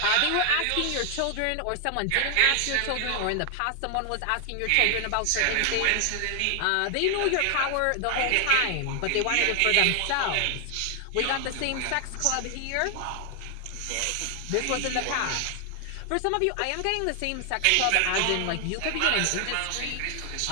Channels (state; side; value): different; both; correlation 0.00